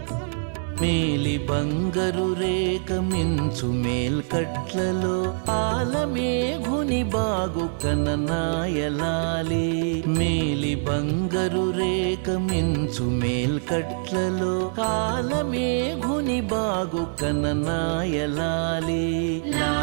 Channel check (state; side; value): silent; left; digital silence